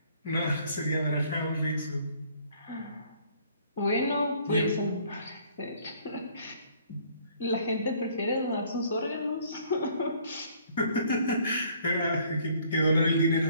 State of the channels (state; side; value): inverted; both; correlation -0.60